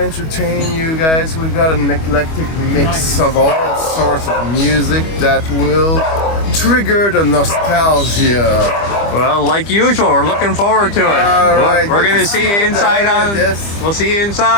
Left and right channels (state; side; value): late; right; 25 ms